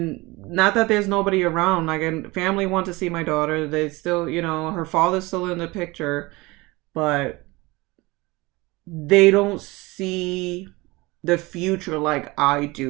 not that there's nobody around, like, and family want to see my daughter. They still, her father's still in the picture, but they don't see the future like I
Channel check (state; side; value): quieter; left; 22.6 dB